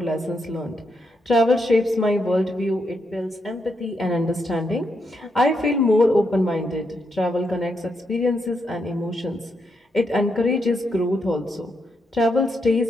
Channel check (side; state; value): both; normal; correlation 0.81